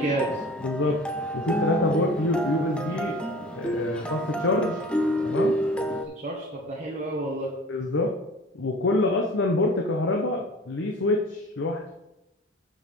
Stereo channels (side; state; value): both; normal; correlation 0.42